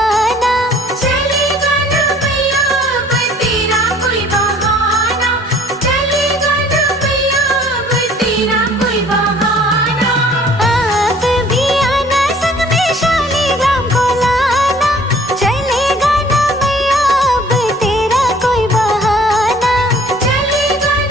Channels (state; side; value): normal; both; correlation 0.54